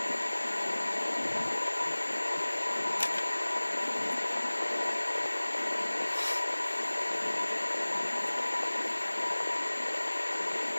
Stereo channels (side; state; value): both; inverted; correlation -1.00